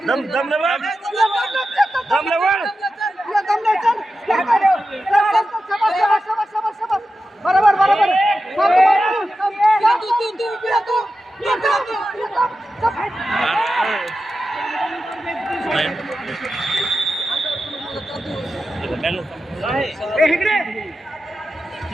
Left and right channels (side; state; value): both; normal; correlation 0.91